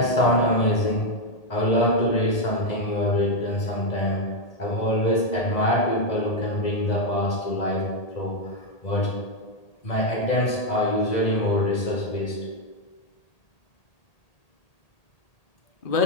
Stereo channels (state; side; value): late; right; 1.8 ms